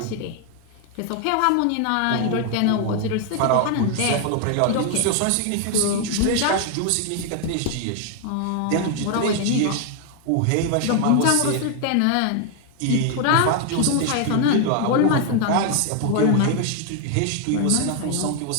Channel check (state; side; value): different; both; correlation 0.00